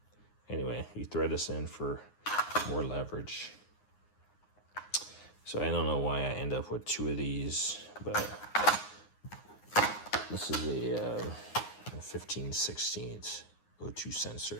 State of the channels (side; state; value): right; late; 9.7 ms